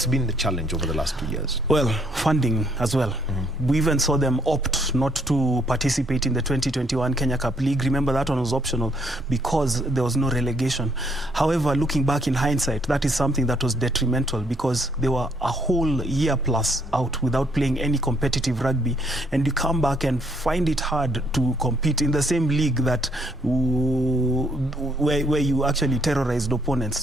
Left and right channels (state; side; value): normal; both; correlation 0.69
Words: been the challenge over the last 2 years? Well, funding as well. We even saw them opt not to participate in the 2021 Kenya Cup League. Remember, that one was optional because there was no relegation. However, looking back in hindsight, that is something that was detrimental, because they were a whole year plus out without playing any competitive rugby, and you come back and find it hard to compete in the same league that where you actually terrorized opponents.